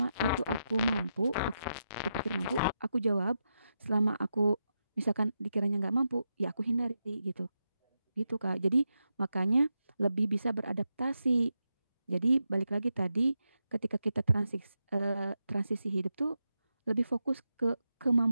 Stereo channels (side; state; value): both; inverted; correlation -0.87